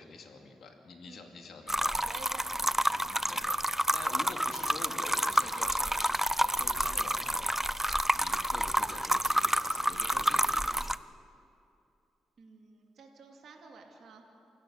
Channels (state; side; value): normal; both; correlation 0.81